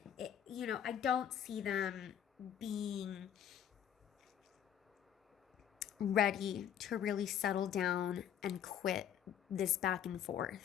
I don't see them being ready to really settle down and quit this back and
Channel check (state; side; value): quieter; right; 9.6 dB